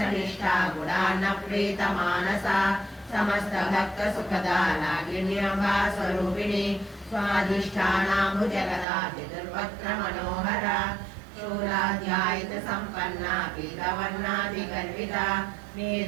गुणान्नप्रीतमानसा समस्तभक्तसुखदा रागिण्यम्बा स्वरूपिणी स्वाधिष्ठानाम्बुजगदा चतुर्वक्त्रमनोहरा शूलाध्यायितसम्पन्ना पीतवर्णादिगर्विता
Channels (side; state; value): left; drops out; at 8.8 s